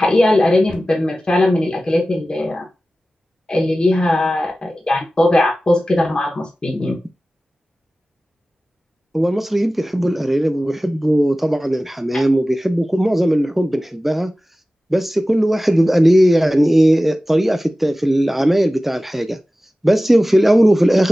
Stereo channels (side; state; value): both; normal; correlation 0.96